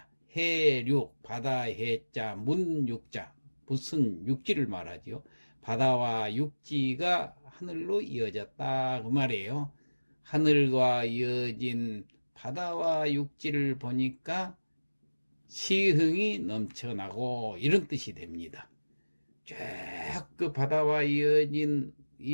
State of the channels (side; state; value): both; inverted; correlation -1.00